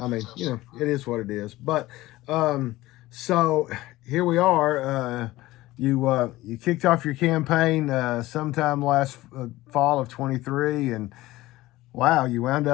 mean, it is what it is. But so here we are. You kicked off your campaign sometime last fall of 23, and wow, you wound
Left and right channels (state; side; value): quieter; right; 17.7 dB